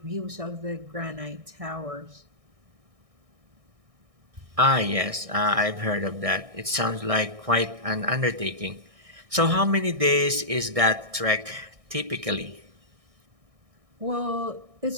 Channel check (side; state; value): left; late; 1.6 ms